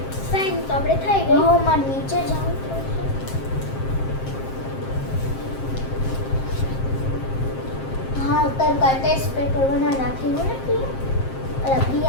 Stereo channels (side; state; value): right; late; 7.6 ms